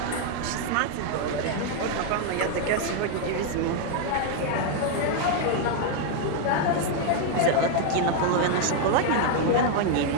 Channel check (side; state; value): both; different; correlation 0.00